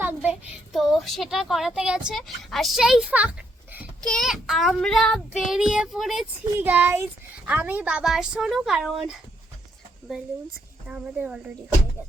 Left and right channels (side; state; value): both; normal; correlation 0.74